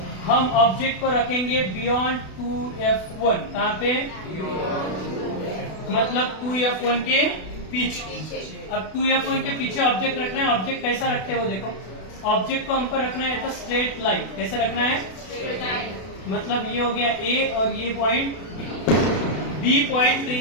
हम ऑब्जेक्ट को रखेंगे बियॉन्ड 2F1, कहाँ पे, मतलब 2F1 के पीछे। अब 2F1 के पीछे ऑब्जेक्ट रखना है। ऑब्जेक्ट कैसा रखते हैं वो देखो, ऑब्जेक्ट को हमको रखना है तो स्ट्रेट लाइन। कैसे रखना है, मतलब ये हो गया ए और ये point B, point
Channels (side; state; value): right; late; 32 ms